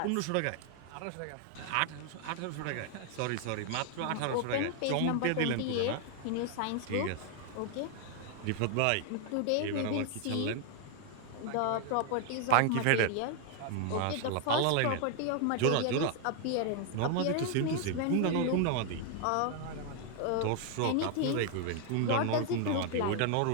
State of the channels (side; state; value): both; different; correlation 0.00